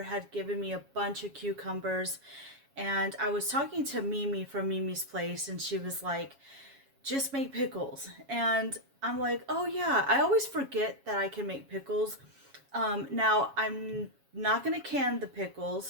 had given me a bunch of cucumbers, and I was talking to Mimi from Mimi's Place, and she was like, just make pickles. And I'm like, oh yeah, I always forget that I can make pickles. Now, I'm not going to can the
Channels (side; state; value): left; late; 7.2 ms